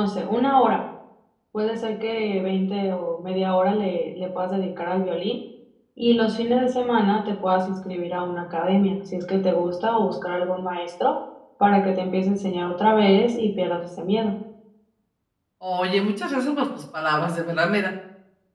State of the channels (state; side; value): identical; both; correlation 1.00